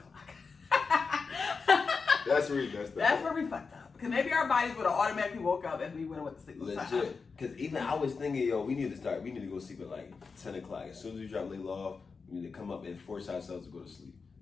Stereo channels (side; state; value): right; quieter; 4.9 dB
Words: That's where we messed up. That's where we fucked up. Because maybe our bodies would have automatically woke up and we would have went to sleep. Legit. Because even I was thinking, yo, we need to go sleep at like 10 o'clock. As soon as we drop Layla off, we need to come up and force ourselves to go to sleep.